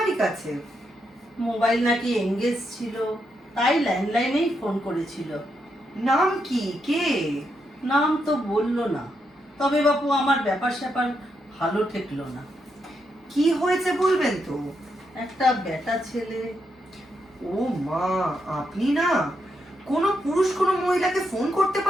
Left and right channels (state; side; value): normal; both; correlation 0.81